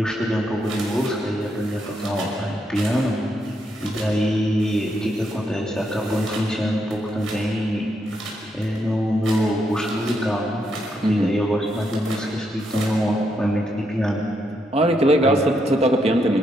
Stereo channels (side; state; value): both; normal; correlation 0.79